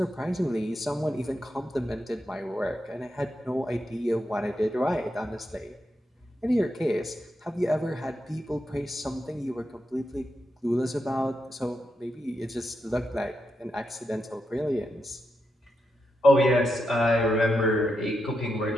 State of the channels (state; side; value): normal; both; correlation 0.85